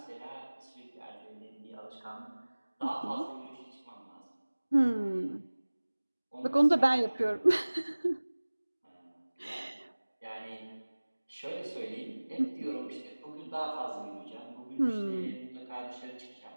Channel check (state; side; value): inverted; both; correlation -1.00